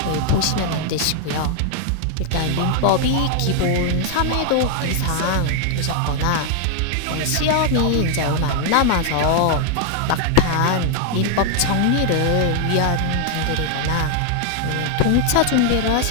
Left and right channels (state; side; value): different; both; correlation 0.00